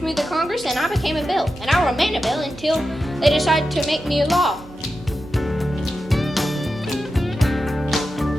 me to Congress, and I became a bill. And I remained a bill until they decided to make me a law.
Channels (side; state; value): right; noise; hum, 20 dB below the sound